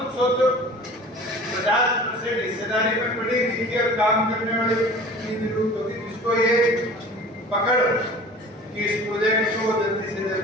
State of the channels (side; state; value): both; normal; correlation 0.42